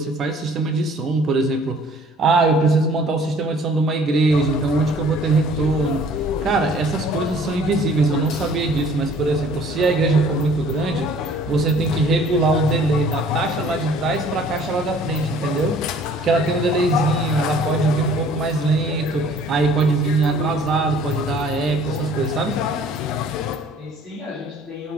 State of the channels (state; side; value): normal; both; correlation 0.54